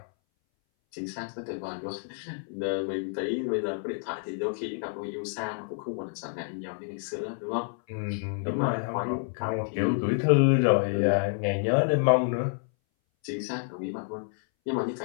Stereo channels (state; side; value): silent; right; 59 dB below the other